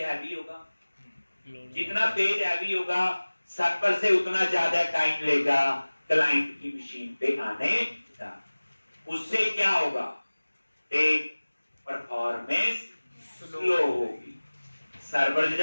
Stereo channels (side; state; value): both; inverted; correlation -1.00